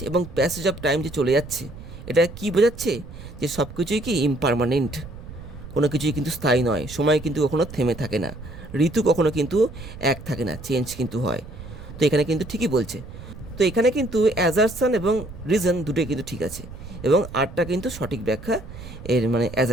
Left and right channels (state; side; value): noise; right; rumble, 14 dB below the sound